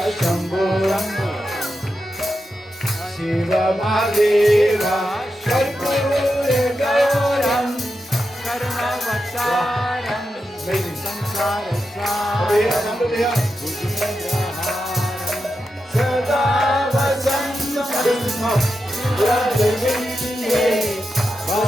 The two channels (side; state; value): both; normal; correlation 0.88